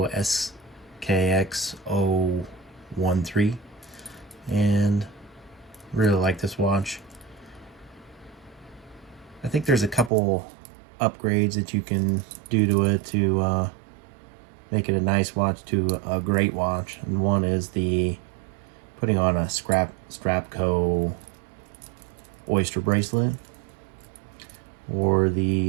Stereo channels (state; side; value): drops out; left; at 10.1 s